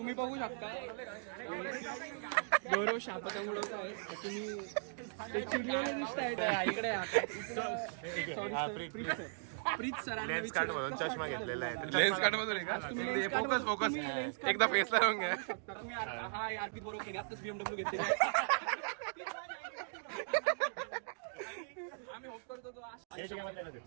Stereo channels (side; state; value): left; silent; digital silence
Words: बघू शकता गौरव शापता उडवत आहे. तुम्ही ते चिडलेले दिसतायत. इकडे प्रीत सरांना लेन्स कार्ड मधून चष्मा घेतलेला आहे. लेन्स कार्ड मधून फोकस एकदा फेसला राहून घ्या. तुम्ही हा अर्पित बरोबर केली आताच BMW घेतलेली. आम्ही होप करतो तो